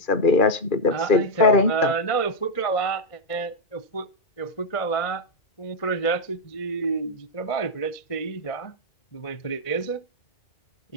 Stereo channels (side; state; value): right; late; 2.4 ms